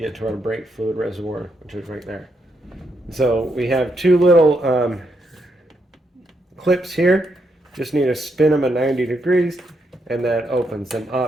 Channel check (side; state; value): both; normal; correlation 0.79